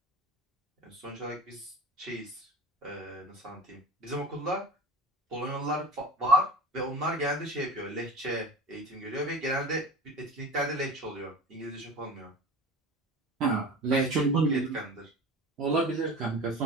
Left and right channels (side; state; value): both; normal; correlation 0.34